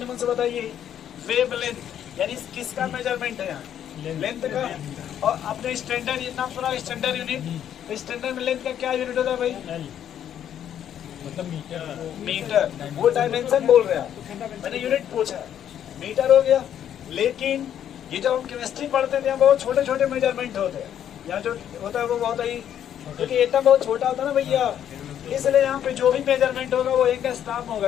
मन से बताइए, वेवलेंथ यानी किसका मेजरमेंट है यहाँ? लेंथ का। और अपने स्टैंडर्ड नाम सुना, स्टैंडर्ड यूनिट। स्टैंडर्ड में लेंथ का क्या यूनिट होता है भाई? मतलब मीटर। वो डायमेंशन बोल रहे हैं, मैंने यूनिट पूछा, मीटर हो गया। लेकिन ये जब हम केमिस्ट्री पढ़ते थे, बहुत छोटे छोटे मेजरमेंट होते हैं। यहाँ जो होता है वो बहुत ही, क्योंकि एटम बहुत छोटा होता है ना भैया, इसलिए यहाँ पे जो भी मेजरमेंट होगा वो एंगस्ट्रॉम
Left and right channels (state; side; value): quieter; right; 9.9 dB